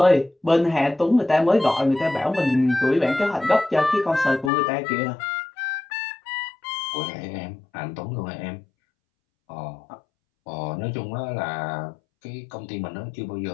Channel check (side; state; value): right; drops out; at 4.5 s